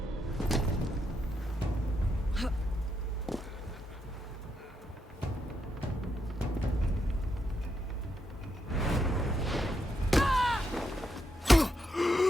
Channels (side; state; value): both; normal; correlation 0.81